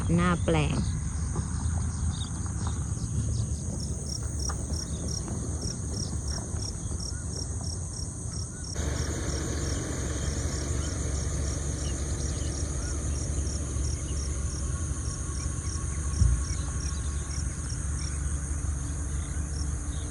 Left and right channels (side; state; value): both; identical; correlation 1.00